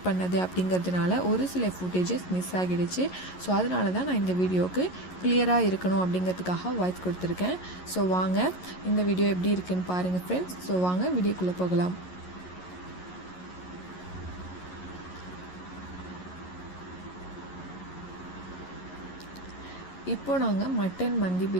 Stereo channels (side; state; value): right; late; 11 ms